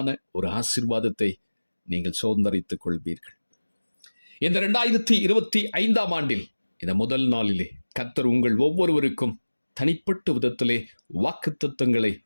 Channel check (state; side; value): inverted; both; correlation -1.00